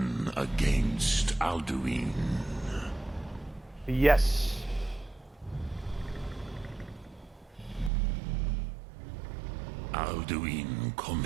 against Alduin. Yes. Alduin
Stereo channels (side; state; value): left; drops out; at 7.9 s